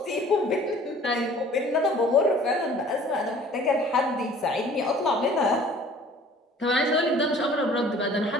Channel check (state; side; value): normal; both; correlation 0.51